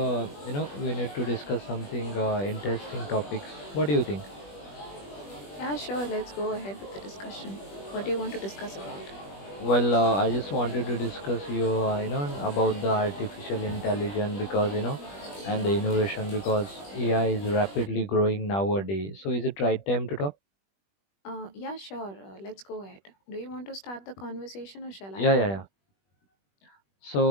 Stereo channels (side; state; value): right; late; 20 ms